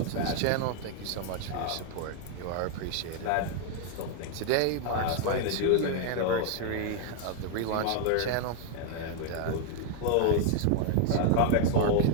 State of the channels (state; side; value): different; both; correlation 0.00